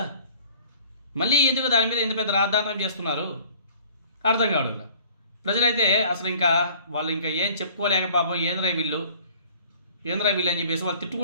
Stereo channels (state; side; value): inverted; both; correlation -0.52